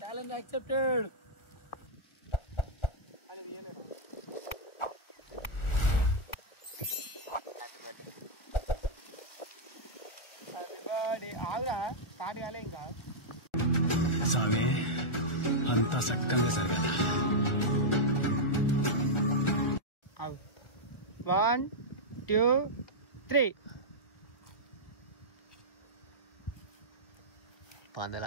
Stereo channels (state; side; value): late; right; 1.4 ms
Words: challenge accepted. ఆగురా, స్టార్ట్ కాలే ఇంకా. స్వామి అంతా చక్కగా జరగాల. 1 2 3.